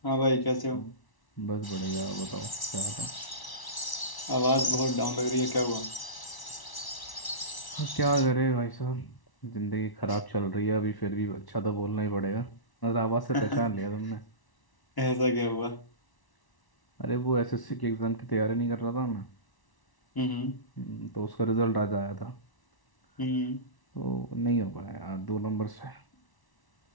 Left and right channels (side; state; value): right; late; 1.1 ms